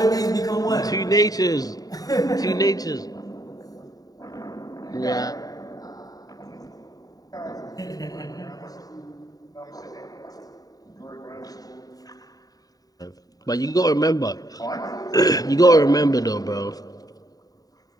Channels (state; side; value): late; right; 0.18 ms